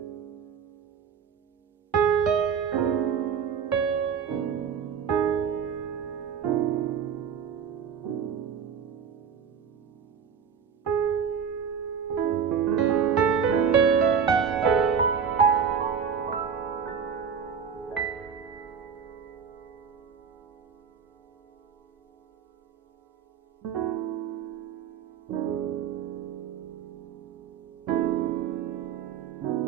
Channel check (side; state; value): left; quieter; 7.1 dB